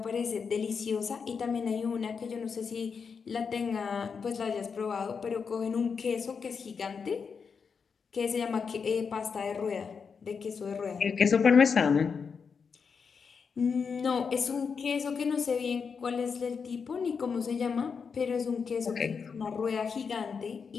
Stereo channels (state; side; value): quieter; right; 5.8 dB